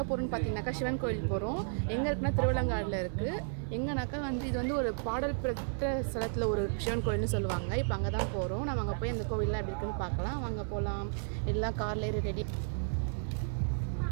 போகிறோம்னு பார்த்தீங்கன்னாக்கா சிவன் கோயில் போகிறோம். எங்கே இருக்குன்னா திருவள்ளங்காடில் இருக்குது. எங்கேனாக்கா இது ஒரு பாடல் பெற்ற ஸ்தலத்தில் ஒரு சிவன் கோயில்னு சொல்லுவாங்க. இப்போ அங்கே தான் போகிறோம். நம்ம அங்கே போய் அந்த கோவிலில் எப்படி இருக்குன்னு பார்க்கலாம். வாங்க போகலாம். எல்லாம் காரில் ரெடி.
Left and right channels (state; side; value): silent; left; digital silence